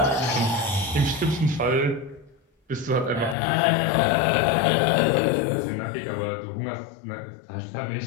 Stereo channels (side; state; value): right; drops out; at 3.4 s